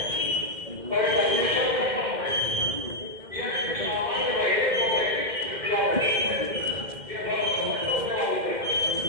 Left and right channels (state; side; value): late; left; 2.1 ms